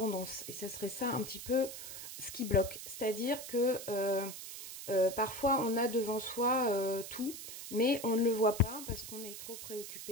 et ça serait ça un petit peu ce qui bloque. C'est-à-dire que parfois on a devant soi tout, mais on ne le voit pas parce qu'on est trop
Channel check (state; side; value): noise; right; hiss, 10 dB below the sound